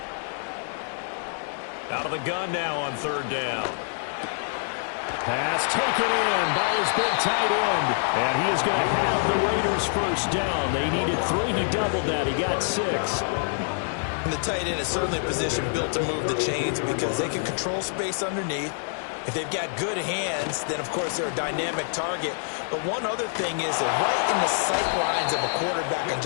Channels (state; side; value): silent; right; 61 dB below the other